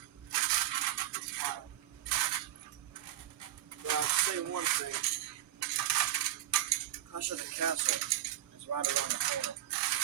But I'll say one thing. Clash of the Castle is right around the corner.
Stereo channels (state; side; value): quieter; left; 13.0 dB